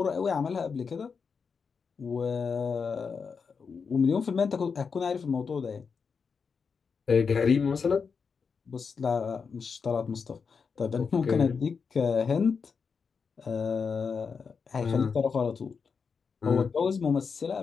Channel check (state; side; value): quieter; right; 5.6 dB